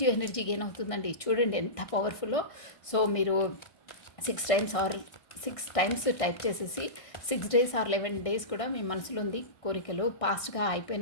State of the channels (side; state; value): right; late; 1.6 ms